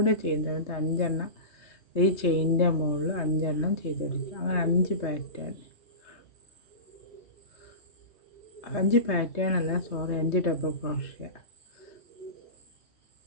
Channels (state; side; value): late; right; 3.2 ms